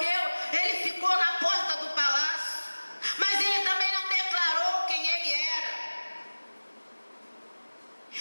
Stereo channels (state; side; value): inverted; both; correlation -1.00